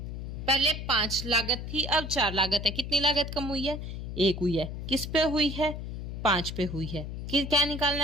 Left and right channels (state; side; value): noise; left; hum, 7 dB below the sound